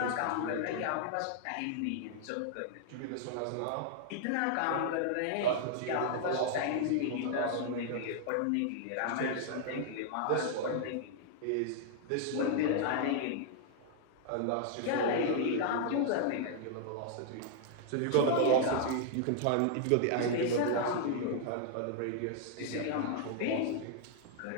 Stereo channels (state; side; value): different; both; correlation -0.01